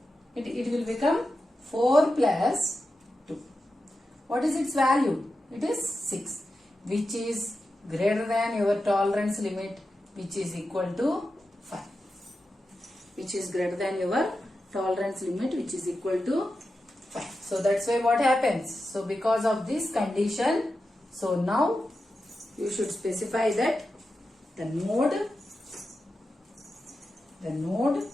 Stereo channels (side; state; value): both; normal; correlation 0.91